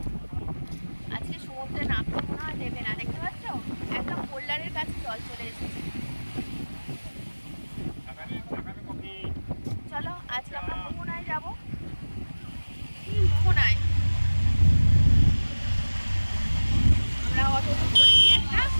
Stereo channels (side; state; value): both; inverted; correlation -1.00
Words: আজকে সমুদ্রে নামতে মনে হয় দেবে না, দেখতে পাচ্ছ একদম হোল্ডারের কাছে জল চলে এসেছে। চলো আজকে আমরা মোহনায় যাবো। মোহনায় আমরা অটো করেছি একটা,